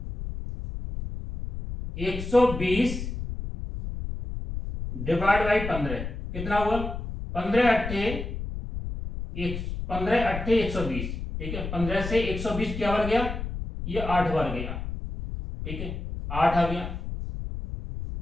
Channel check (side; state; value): left; noise; rumble, 6 dB below the sound